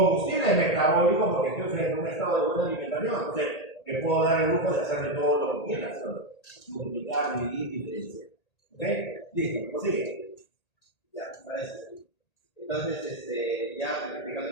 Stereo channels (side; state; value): right; late; 1.8 ms